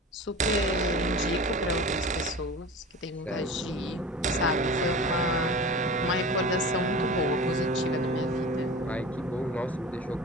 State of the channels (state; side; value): normal; both; correlation 0.35